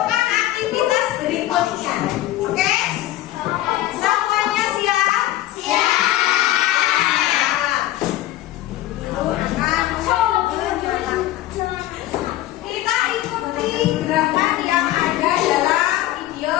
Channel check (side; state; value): right; quieter; 14.9 dB